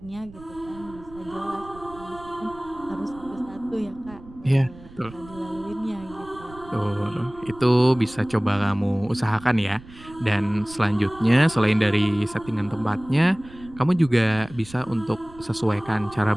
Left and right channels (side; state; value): right; noise; rumble, 19 dB below the sound